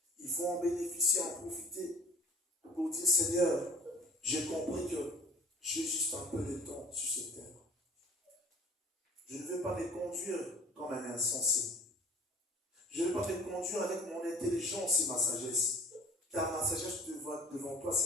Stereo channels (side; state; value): both; normal; correlation 0.49